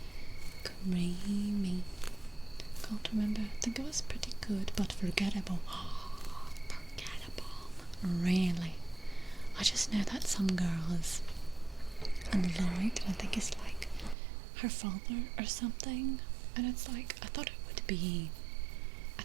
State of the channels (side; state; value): left; drops out; at 14.2 s